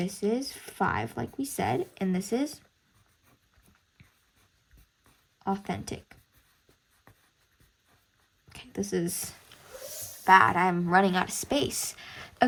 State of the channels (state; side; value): identical; both; correlation 1.00